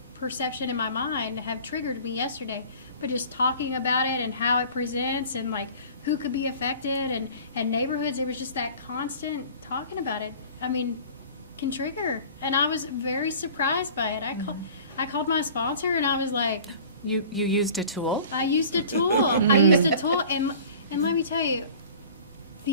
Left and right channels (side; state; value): both; inverted; correlation -0.45